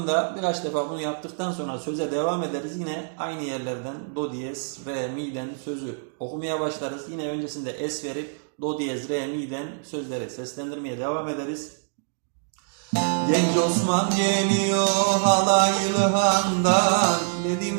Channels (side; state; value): left; silent; digital silence